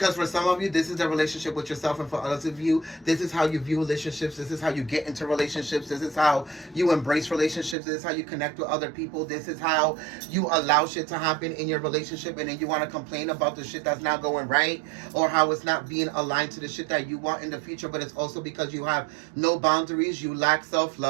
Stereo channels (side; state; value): left; drops out; at 7.8 s